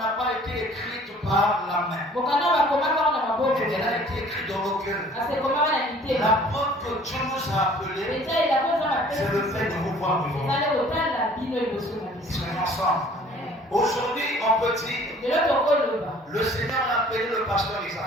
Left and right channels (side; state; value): both; normal; correlation 0.52